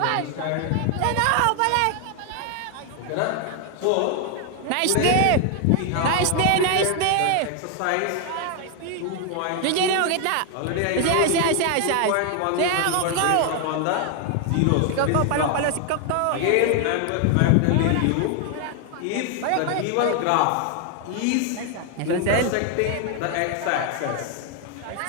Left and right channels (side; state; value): both; different; correlation 0.00